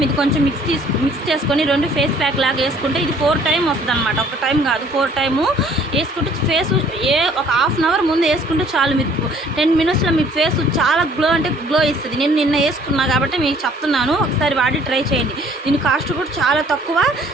మిక్స్ చేసుకొని 2 ఫేస్ ప్యాక్ లాగా వేసుకుంటే ఇది 4 టైం వస్తుంది అనమాట. ఒక టైం కాదు 4 టైము వేసుకుంటే ఫేస్ ఒక హాఫ్ అన్ అవర్ ముందు వేసుకుంటే చాలు. మీరు 10 మినిట్స్లో మీ ఫేస్ చాలా గ్లో ఇస్తుంది. నేను నిన్న వేసుకున్నా కాబట్టి మీకు చెప్తున్నాను, ఒకసారి వాడి ట్రై చేయండి. దీని కాస్ట్ కూడా చాలా తక్కువ,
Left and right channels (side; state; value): both; normal; correlation 0.58